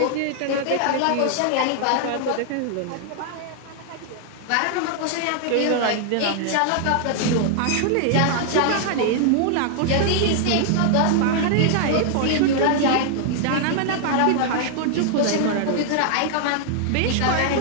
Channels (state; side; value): different; both; correlation -0.01